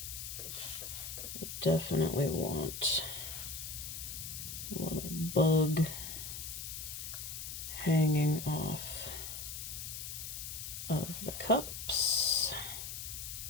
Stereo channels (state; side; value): noise; left; hiss, 7 dB below the sound